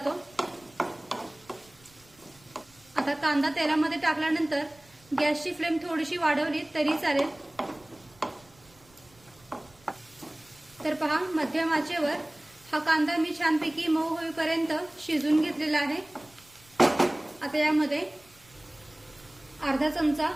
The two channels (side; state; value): right; noise; rumble, 28 dB below the sound